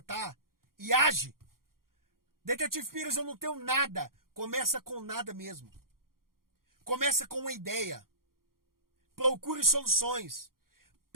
e age. Detetive Pires, eu não tenho nada. Começa com nada mesmo. Começa com uma ideia. Procure soluções.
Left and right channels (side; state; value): left; late; 0.92 ms